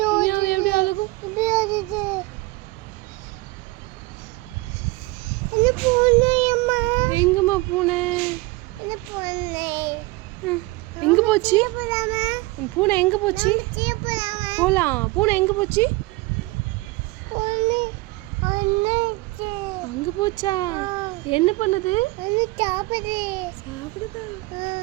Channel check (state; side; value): quieter; left; 22.5 dB